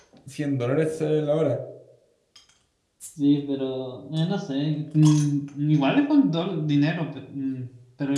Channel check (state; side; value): identical; both; correlation 1.00